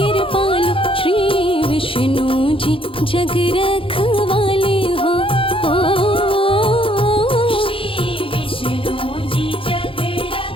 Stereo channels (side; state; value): right; late; 0.26 ms